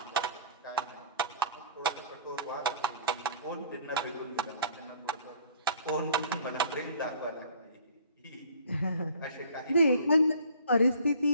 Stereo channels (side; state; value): both; inverted; correlation -0.52